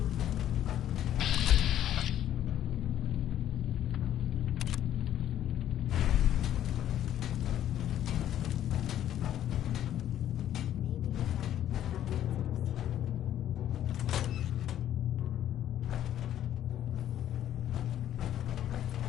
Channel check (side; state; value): right; quieter; 11.4 dB